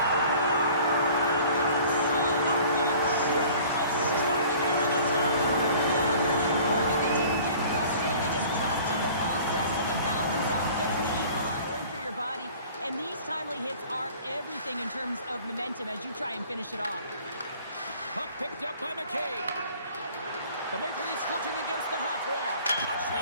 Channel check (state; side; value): inverted; both; correlation -0.48